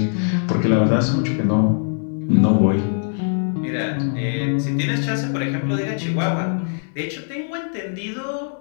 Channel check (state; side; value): silent; right; digital silence